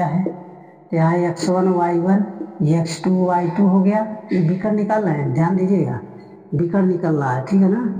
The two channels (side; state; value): both; identical; correlation 1.00